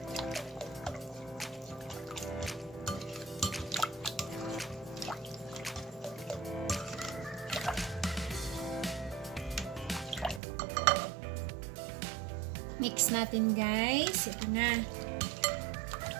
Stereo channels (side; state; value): left; drops out; at 10.4 s